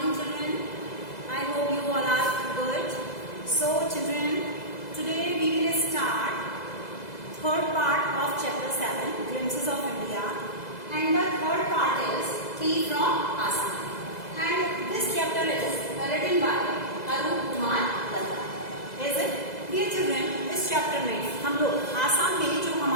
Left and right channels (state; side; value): late; right; 2.0 ms